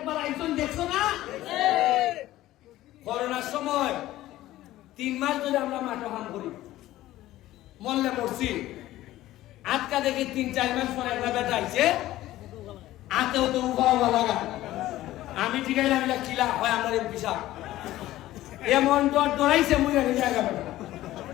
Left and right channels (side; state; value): right; quieter; 15.3 dB